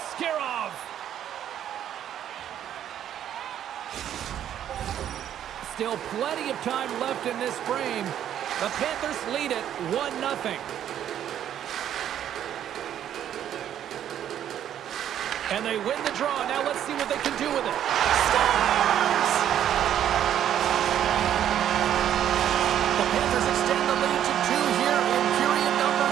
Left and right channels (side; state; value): left; quieter; 10.4 dB